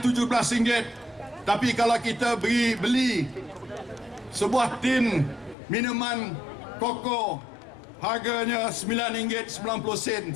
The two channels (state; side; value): drops out; right; at 5.6 s